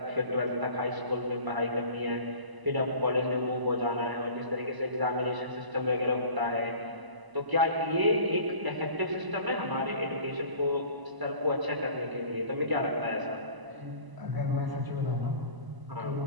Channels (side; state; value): left; late; 1.0 ms